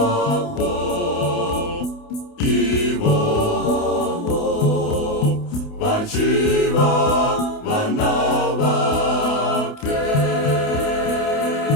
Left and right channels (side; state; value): right; late; 28 ms